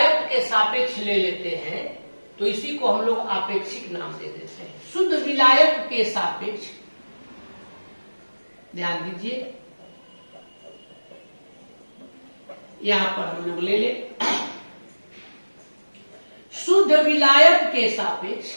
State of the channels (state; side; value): inverted; both; correlation -1.00